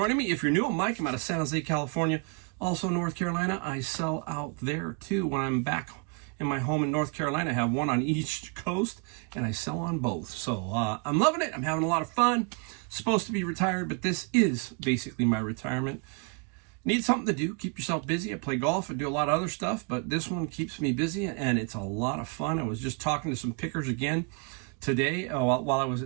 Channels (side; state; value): left; quieter; 35.8 dB